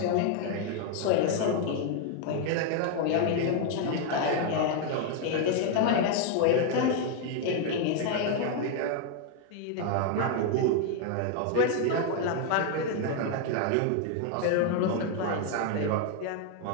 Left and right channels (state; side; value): different; both; correlation 0.01